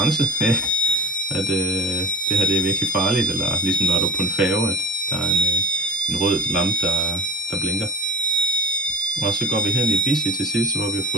At det her det er virkelig farligt, eller ligesom når du er på en færge, at der er en rød lampe, der blinker. Og så går vi hen i Busy til sidst, hvor vi har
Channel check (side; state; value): both; normal; correlation 0.33